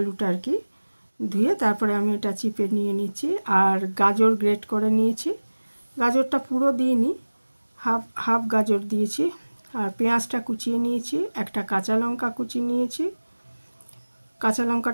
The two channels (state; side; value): inverted; both; correlation -1.00